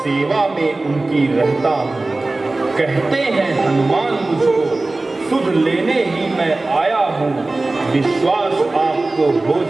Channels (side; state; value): left; quieter; 3.1 dB